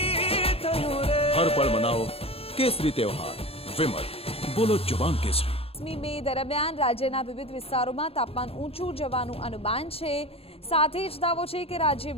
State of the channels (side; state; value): right; late; 0.28 ms